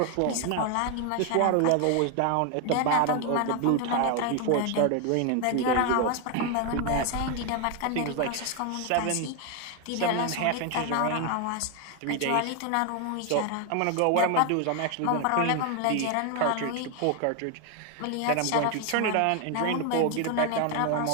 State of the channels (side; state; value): both; different; correlation 0.01